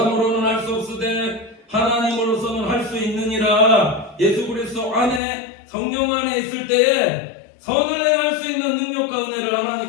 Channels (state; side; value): drops out; right; at 5.2 s